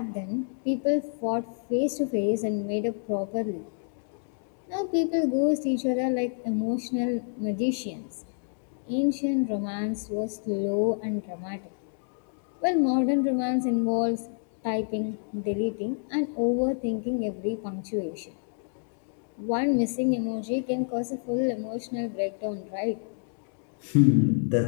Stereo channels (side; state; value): right; silent; digital silence